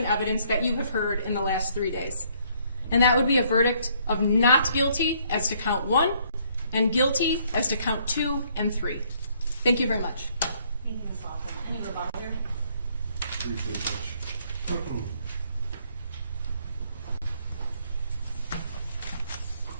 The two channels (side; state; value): both; inverted; correlation -0.66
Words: evidence that you have heard in the last 3 days. And that would be a verdict of not guilty as to count 1 and guilty as to count 2 and 3. Thank you very much. Thank you, Ms. Laughlin. Any rebuttal there? Briefly, Judge.